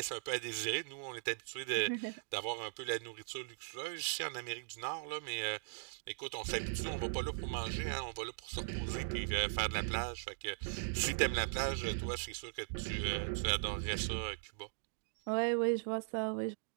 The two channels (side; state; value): left; silent; digital silence